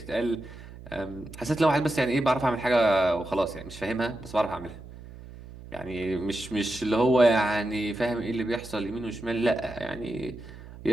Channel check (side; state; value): right; noise; hum, 16 dB below the sound